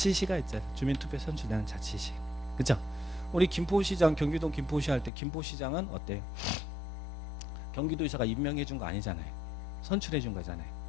있잖아요. 주민투표에 선출되는 자치시. 그죠? 우리 김포시장, 경기도 김포시 할 때 김포시장은 어때요? 경기도지사가 임명해 준 거 아니잖아요. 선출해 준 거잖아요.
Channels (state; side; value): drops out; right; at 5.1 s